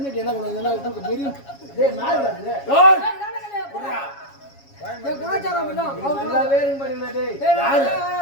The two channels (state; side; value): late; right; 7.2 ms